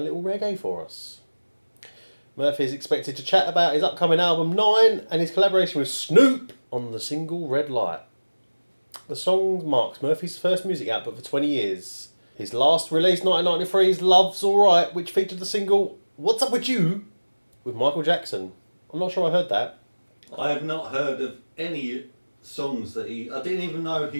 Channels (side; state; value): both; inverted; correlation -1.00